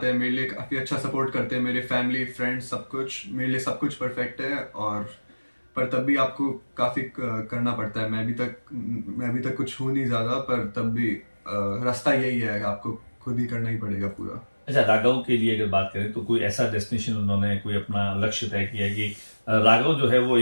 है। मेरे लिए काफ़ी अच्छा सपोर्ट करते हैं मेरे फैमिली, फ्रेंड्स, सब कुछ मेरे लिए, सब कुछ परफेक्ट है। और पर तब भी आपको काफ़ी करना पड़ता है। मैं अभी तक कुछ हूँ नहीं ज़्यादा, पर तब भी रास्ता यही है, आपको खुद ही करना ही पड़ेगा पूरा। अच्छा, राघव के लिए अगर बात करें तो कोई ऐसा डेस्टिनेशन उन्होंने कोई अपना लक्ष्य तय किया है कि राघव जो है वो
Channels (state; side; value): inverted; both; correlation -1.00